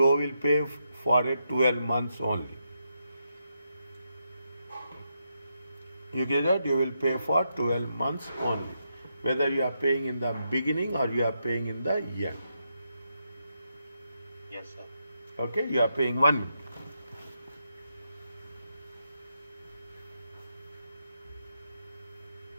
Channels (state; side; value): inverted; both; correlation -0.83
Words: pay for 12 months only. You get that? You will pay for 12 months only. Whether you are paying in the beginning or you are paying in the end. Yes, sir. Okay, you are paying 1 minute.